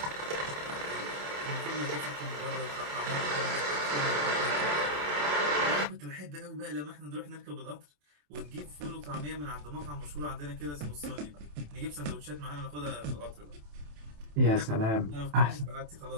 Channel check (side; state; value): left; late; 27 ms